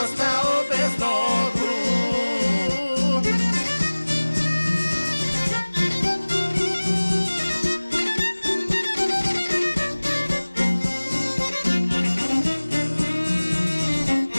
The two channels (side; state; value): both; inverted; correlation -1.00